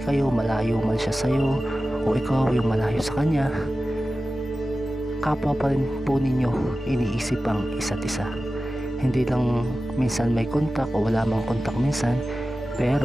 kayo, malayo man siya sa'yo o ikaw yung malayo sa kanya, kapwa pa rin po ninyo iniisip ang isa't isa. Hindi lang minsan may kontak o wala mang kontak minsan,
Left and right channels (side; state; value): both; normal; correlation 0.95